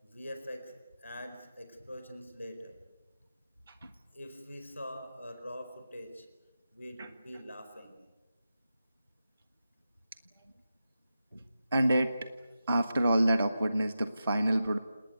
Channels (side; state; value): both; inverted; correlation -0.91